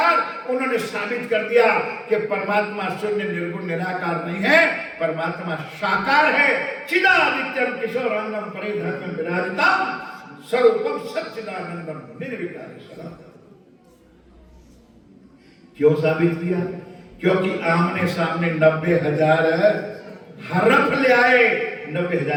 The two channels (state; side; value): identical; both; correlation 1.00